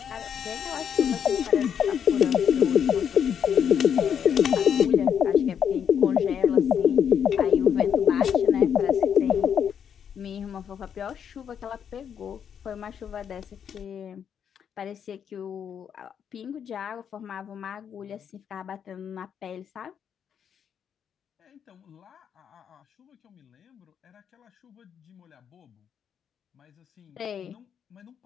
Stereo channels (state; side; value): quieter; right; 8.0 dB